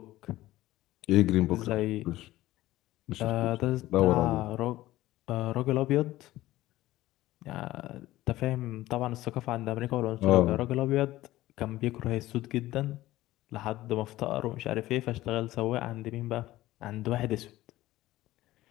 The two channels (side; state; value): right; quieter; 16.2 dB